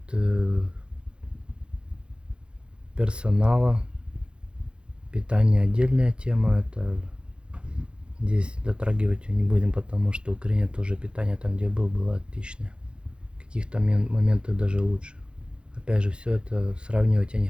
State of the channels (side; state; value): left; late; 0.054 ms